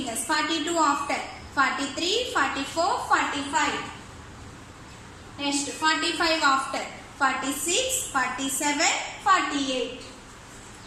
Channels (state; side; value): identical; both; correlation 1.00